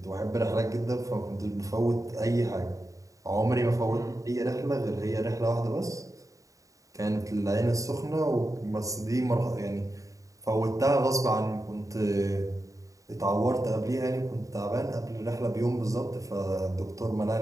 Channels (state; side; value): late; left; 0.16 ms